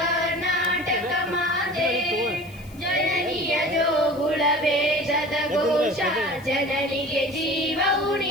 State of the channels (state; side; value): noise; left; hiss, 25 dB below the sound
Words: ಮಾತೆ. ಜನನಿಯ ಜೋಗುಳ ವೇದದ ಘೋಷ, ಜನನಿಗೆ ಜೀವವು